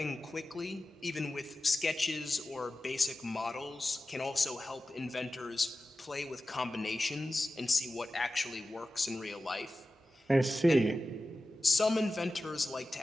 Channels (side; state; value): both; normal; correlation 0.94